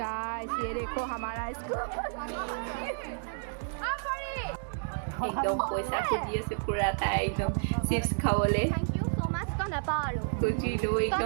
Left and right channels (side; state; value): left; silent; digital silence